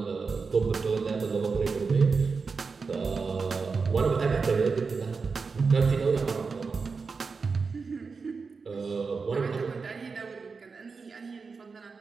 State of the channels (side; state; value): left; quieter; 4.8 dB